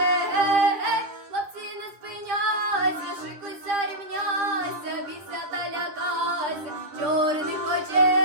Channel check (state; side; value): late; left; 9.7 ms